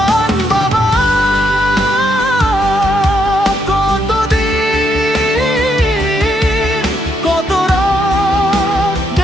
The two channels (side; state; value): both; normal; correlation 0.76